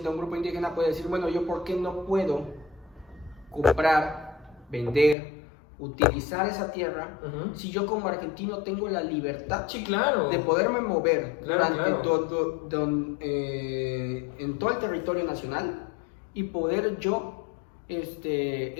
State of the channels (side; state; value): right; drops out; at 5.2 s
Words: a un grupo indígena puede decir, bueno, yo ¿por qué no puedo comprar, vender, utilizar esa tierra Ujú. si yo como argentino tengo la libertad Sí, claro. de poderme mover Claro, durante claro. en todo el territorio nacional, y poder yo